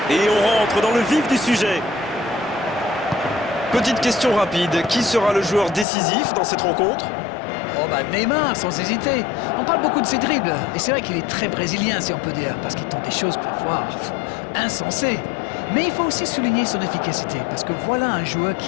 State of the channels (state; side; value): drops out; right; at 5.9 s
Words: Et on rentre dans le vif du sujet. Petite question rapide, qui sera le joueur décisif dans cette rencontre? Oh bah Neymar, sans hésiter. On parle beaucoup de ses dribbles, et c'est vrai qu'il est très brésilien si on peut dire, parce qu'il tente des choses parfois insensées. Mais il faut aussi souligner son efficacité, parce que voilà un joueur